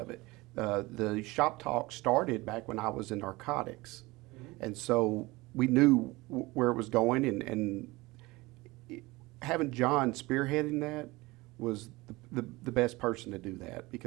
it. The shop talk started back when I was in narcotics, and so we knew where it was going, and having John spearheading that was the best person to do that,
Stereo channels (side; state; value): left; quieter; 21.7 dB